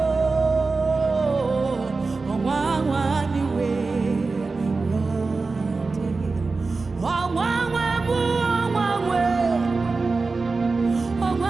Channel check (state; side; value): quieter; left; 4.0 dB